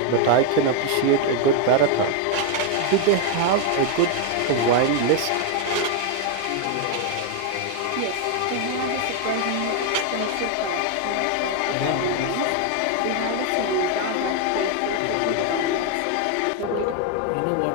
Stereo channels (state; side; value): different; both; correlation 0.01